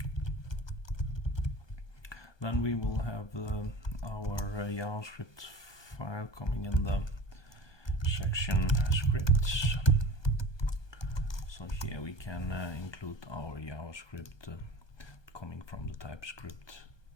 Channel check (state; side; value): late; right; 1.2 ms